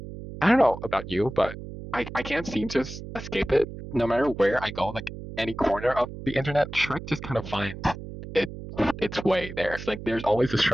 don't know about you, but I can't seem to escape it. No matter where I go, like any corner of the internet, Shrek just kind of finds it its way there. It's like there's always a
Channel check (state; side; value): noise; right; hum, 11 dB below the sound